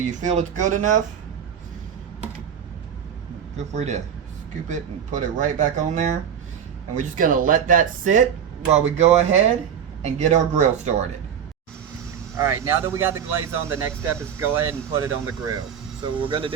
feel it's good enough. Feel free to scoop it and put it right back on there. And we're just gonna let that sit while we go ahead and get our grill started. Alright, now that we got the glaze on, the next step is go ahead and put it on the grill. So what we're gonna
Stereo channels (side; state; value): left; quieter; 8.3 dB